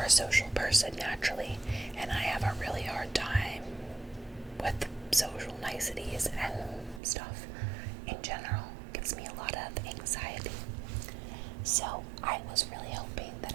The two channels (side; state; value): left; drops out; at 7.0 s